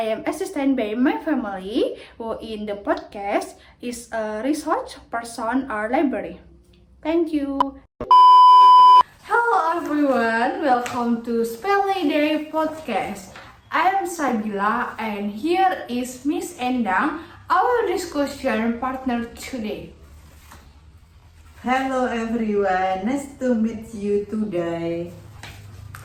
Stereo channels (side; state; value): both; identical; correlation 1.00